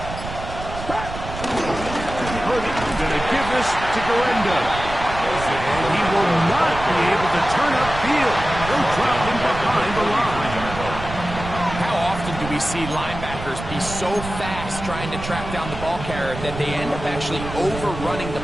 going to give this to Guerrero. And he will not be able to turn upfield. He'll drop him behind the line. How often do we see linebackers be so fast trying to track down the ball carrier that they end up actually overrunning the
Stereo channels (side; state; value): right; noise; rumble, 9 dB below the sound